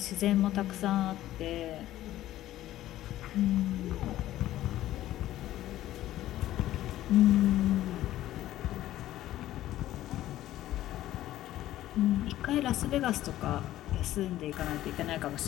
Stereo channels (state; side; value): quieter; right; 14.0 dB